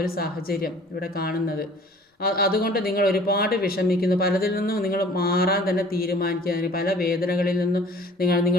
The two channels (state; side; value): normal; both; correlation 0.50